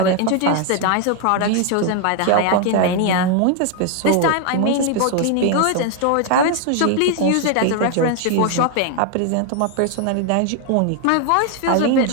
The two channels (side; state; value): both; different; correlation 0.00